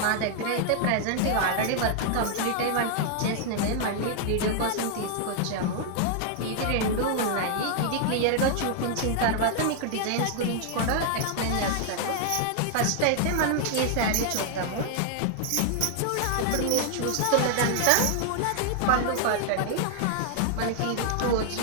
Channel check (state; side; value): different; both; correlation 0.00